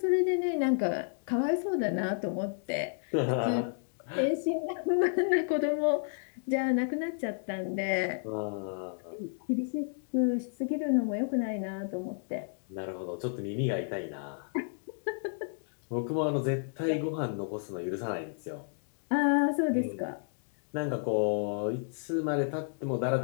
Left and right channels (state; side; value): silent; right; digital silence